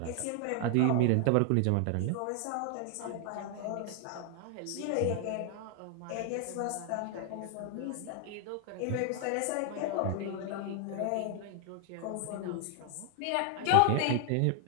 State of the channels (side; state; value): both; different; correlation 0.00